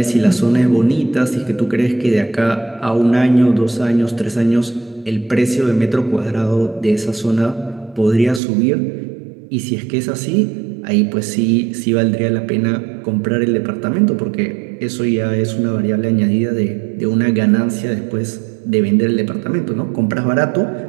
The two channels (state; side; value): drops out; left; at 8.4 s